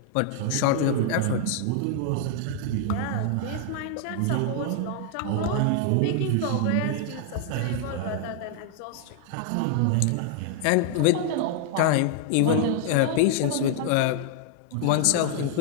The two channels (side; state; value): both; different; correlation 0.00